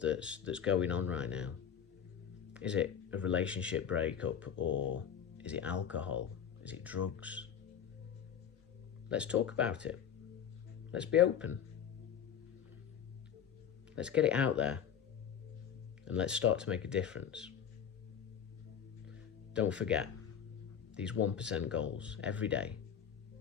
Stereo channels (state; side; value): quieter; right; 8.5 dB